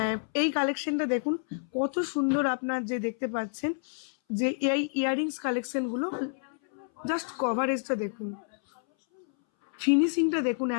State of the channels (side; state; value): right; silent; 59 dB below the other